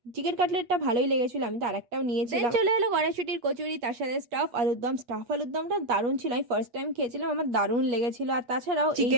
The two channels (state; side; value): late; left; 8.3 ms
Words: Chicken কাটলেটটা ভালোই লেগেছিল, আমি তো আরেকটাও নিয়েছিলাম। চলে এলো কড়াইশুটির কচুরি, তার সাথে স্টাফ আলুর দম। স্টাফ আলুর দমটা দারুণ ছিল, আমি ফার্স্ট টাইম খেয়েছিলাম, আমার দারুণ লেগেছিল। আর তাছাড়াও